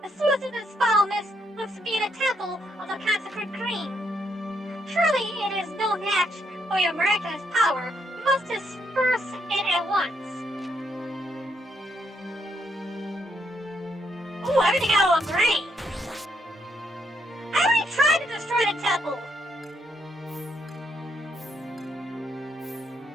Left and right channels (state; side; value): normal; both; correlation 0.75